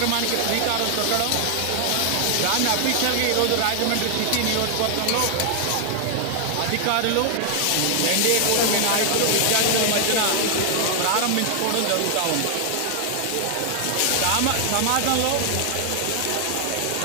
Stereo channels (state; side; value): different; both; correlation 0.00